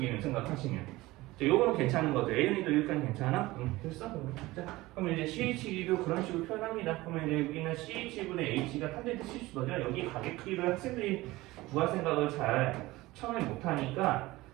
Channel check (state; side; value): quieter; left; 19.2 dB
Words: 생각하시면 자, 요거는 괜찮은 거죠. A는도 여기까지 괜찮아? 응, 됐어. 자, 그러면 이제 CH도 그런 식으로 표현합니다. 그러면 이제 여기는 CH분의 H가 탄젠트 70도죠. 여기 가격 크기를 학생들이 구할 생각을 잘 처음에 못하니까